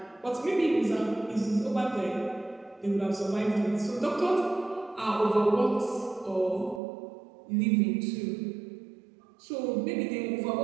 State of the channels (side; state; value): left; drops out; at 6.8 s